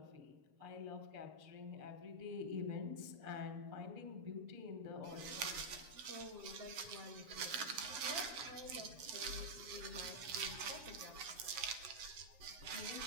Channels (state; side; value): late; left; 7.1 ms